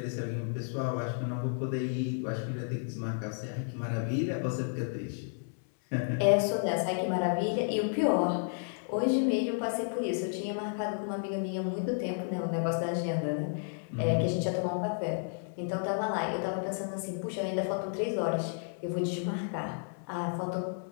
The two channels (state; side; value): silent; right; 56 dB below the other